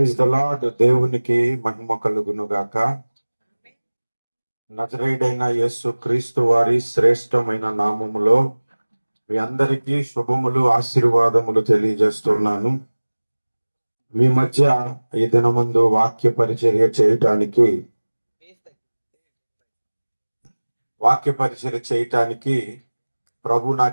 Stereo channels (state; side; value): inverted; both; correlation -1.00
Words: the lord. దేవునికి మహిమ కలుగును గాక. నజరేయుడైన యేసు క్రీస్తు వారి శ్రేష్టమైన నామములో మీ అందరికీ శుభములు, ఆశీర్వాదములు తెలియజేస్తున్నాను. మీ మధ్య ఈ దినమందు వాక్య పరిచర్య చేయటానికి ప్రభు